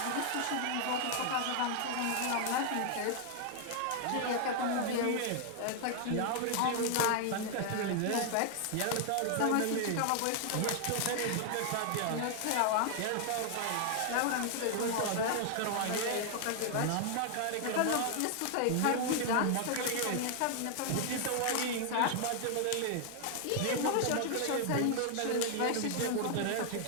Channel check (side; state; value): both; different; correlation 0.00